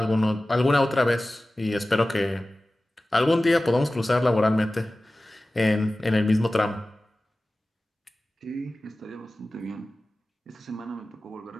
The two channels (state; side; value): normal; both; correlation 0.96